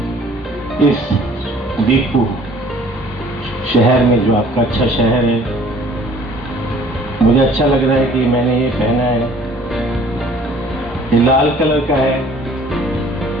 इस दीपू शहर में, जो आपका अच्छा शहर है, मुझे अच्छा लग रहा है कि मैंने ये पहना है, ये लाल कलर का है।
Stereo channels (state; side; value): normal; both; correlation 0.53